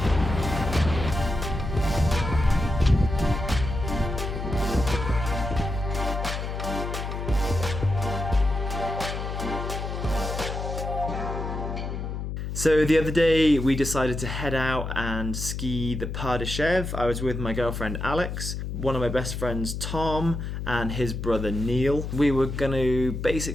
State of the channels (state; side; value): noise; left; hum, 5 dB below the sound